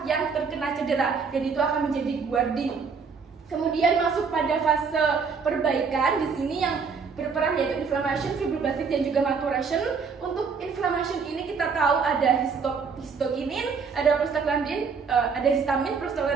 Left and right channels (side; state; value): left; quieter; 5.5 dB